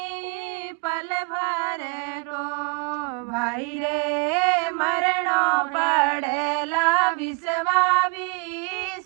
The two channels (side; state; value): left; quieter; 32.4 dB